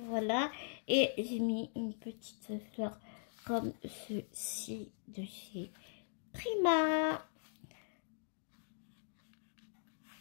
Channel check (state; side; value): silent; right; digital silence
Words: voilà. Et j'ai mis une petite fleur comme ceci de chez Prima.